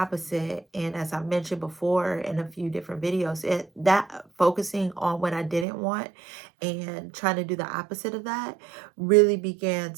And as I mentioned before in a few different videos, that focusing on what I didn't want and trying to do the opposite of that really began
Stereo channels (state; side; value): drops out; left; at 5.7 s